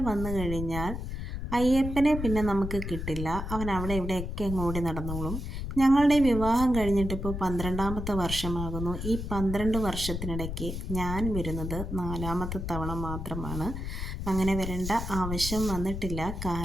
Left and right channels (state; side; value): noise; left; rumble, 5 dB below the sound